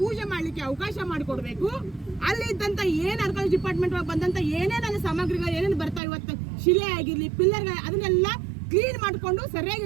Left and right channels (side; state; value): left; drops out; at 6.0 s